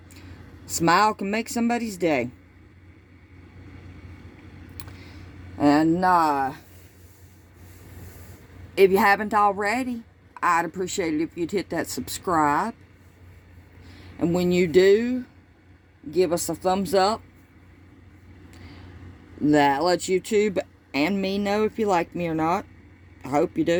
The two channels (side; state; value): both; identical; correlation 1.00